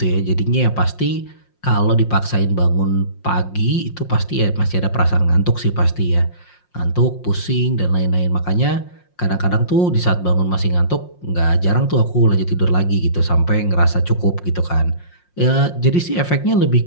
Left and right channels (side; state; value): right; late; 5.6 ms